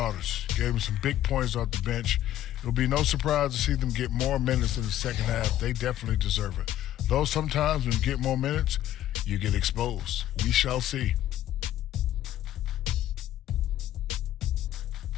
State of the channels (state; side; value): quieter; right; 12.7 dB